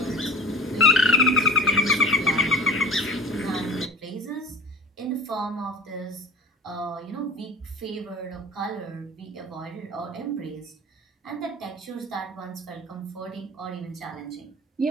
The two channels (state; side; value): normal; both; correlation 0.37